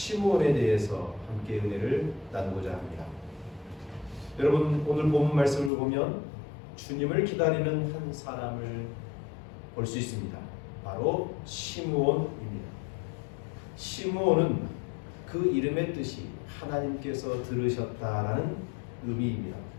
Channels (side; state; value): right; drops out; at 5.7 s